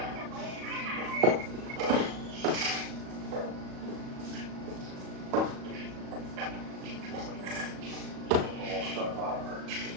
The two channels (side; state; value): left; late; 37 ms